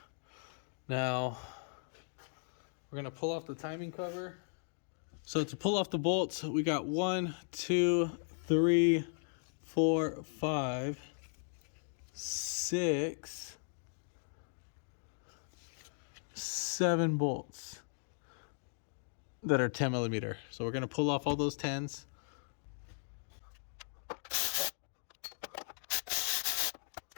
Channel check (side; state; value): right; silent; digital silence